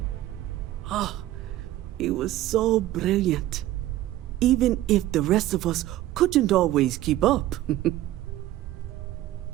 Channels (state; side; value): quieter; left; 14.9 dB